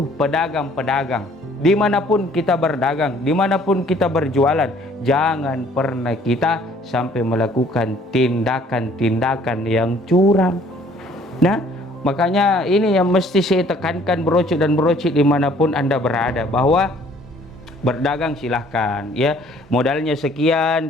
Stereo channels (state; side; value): normal; both; correlation 0.58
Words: pedagang-pedagang, dimanapun kita berdagang, dimanapun kita berjualan, jangan pernah kita sampai melakukan tindakan-tindakan yang curang. Nah, makanya ini yang mesti saya tekankan, berocok dan berocik dimanapun Anda berada, bahwa berdagang silahkan, ya. Modalnya